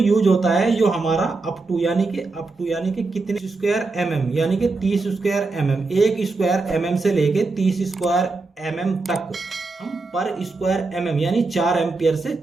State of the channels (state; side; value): quieter; left; 3.6 dB